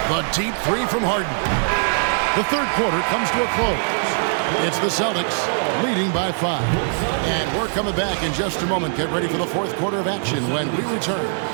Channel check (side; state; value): left; silent; 65 dB below the other